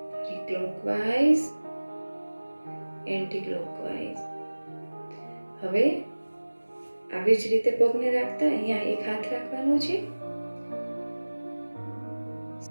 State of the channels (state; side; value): inverted; both; correlation -1.00